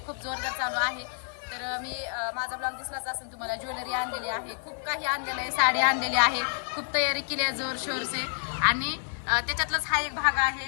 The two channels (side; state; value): right; silent; 59 dB below the other